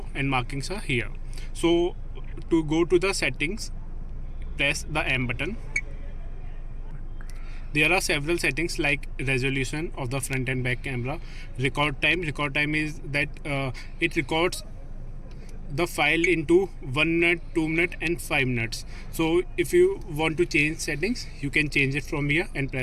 and markings are here. So to go to the settings, press the M button. There are several settings like resolution of the front and back camera, record time. Record time is that it records the file into 1 minute, 2 minutes and 5 minutes. So if you want to change settings, you can change it from here and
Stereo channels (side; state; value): both; identical; correlation 1.00